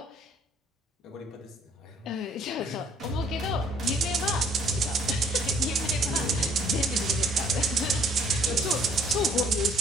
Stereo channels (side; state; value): both; normal; correlation 0.61